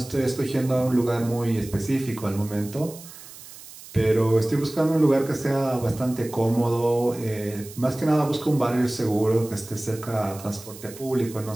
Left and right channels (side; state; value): right; noise; hiss, 17 dB below the sound